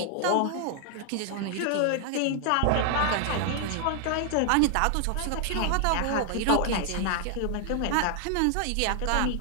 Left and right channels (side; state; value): both; different; correlation 0.00